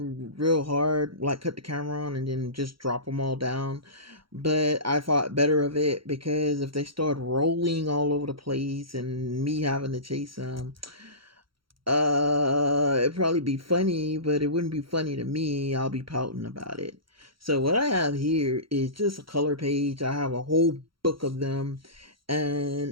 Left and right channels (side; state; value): left; late; 0.74 ms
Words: real hard, like cut the camera on and then just drop them all down. But I thought better of it because if they start rolling all over the place and me having to chase them, it'd probably be funny, but it wouldn't be funny to me. I'll be pouting about it. So what I have here is just a color page. I have a whole book of them,